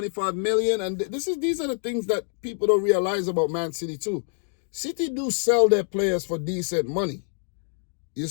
million. And these are the things that people don't realize about Man City too. City do sell their players for decent money. You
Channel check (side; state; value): right; silent; 61 dB below the other